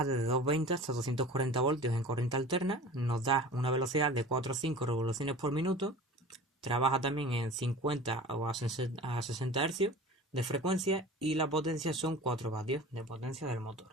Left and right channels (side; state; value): both; normal; correlation 0.39